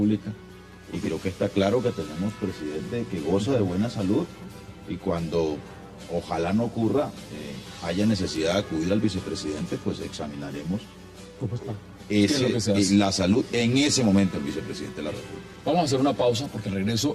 Y creo que está claro que tenemos presidente que goza de buena salud, y cuando ojalá no ocurra, haya necesidad de acudir al vicepresidente, pues examinaremos la salud en ese momento del vicepresidente de la República. Vamos a hacer una pausa, porque al regreso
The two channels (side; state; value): both; identical; correlation 1.00